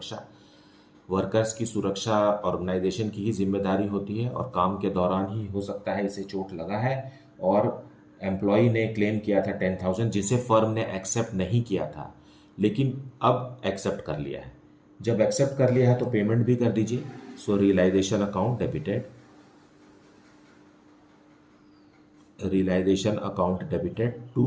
वर्कर्स की सुरक्षा ऑर्गेनाइजेशन की ही जिम्मेदारी होती है, और काम के दौरान ही हो सकता है इसे चोट लगा है, और एम्प्लॉय ने क्लेम किया था 10,000 जिसे फर्म ने एक्सेप्ट नहीं किया था, लेकिन अब एक्सेप्ट कर लिया है। जब एक्सेप्ट कर लिया है तो पेमेंट भी कर दीजिए। So realization account debited, realization account debited to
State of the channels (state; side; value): identical; both; correlation 1.00